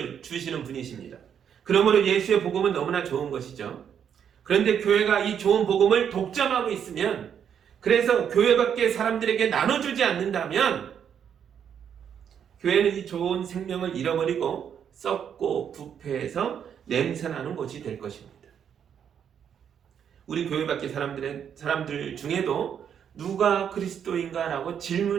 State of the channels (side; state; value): left; quieter; 8.3 dB